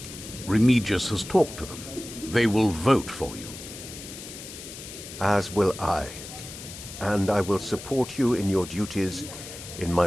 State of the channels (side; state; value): left; noise; hiss, 12 dB below the sound